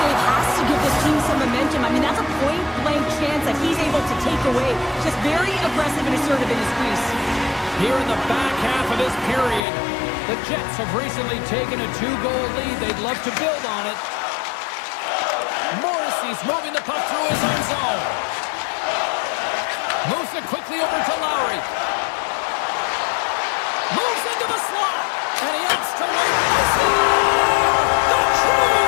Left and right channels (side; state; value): right; drops out; at 9.6 s